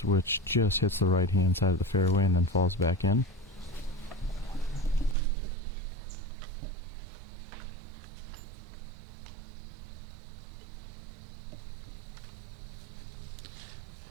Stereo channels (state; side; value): drops out; left; at 5.2 s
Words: which just hits the right hand side of the fairway and then falls back in.